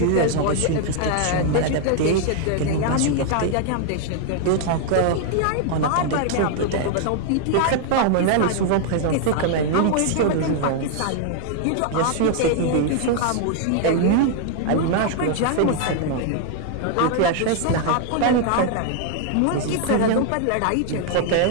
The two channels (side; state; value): both; different; correlation 0.00